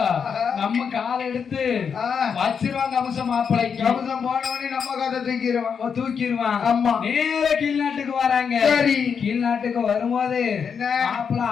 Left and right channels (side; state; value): right; quieter; 6.6 dB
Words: நம்ம காலை எடுத்து வச்சிருவாங்க. அம்சம் மாப்பிள்ளைக்கு அம்சம் போனவனே நம்ம கதை தூக்கிடுவான். ஆமா. நேர கீழ்நாட்டுக்கு வராங்க. கீழ்நாட்டுக்கு வரும்போது மாப்பிள்ளை